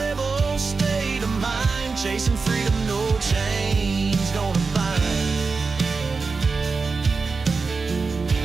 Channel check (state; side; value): quieter; left; 4.4 dB